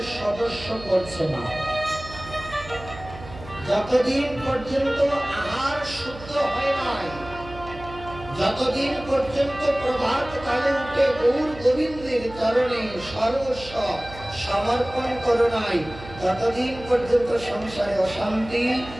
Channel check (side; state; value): right; noise; hum, 15 dB below the sound